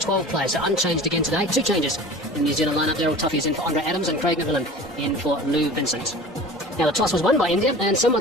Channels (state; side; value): normal; both; correlation 0.39